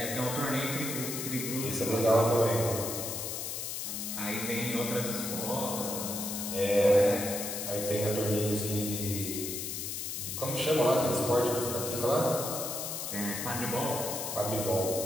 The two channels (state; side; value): noise; left; hiss, 4 dB below the sound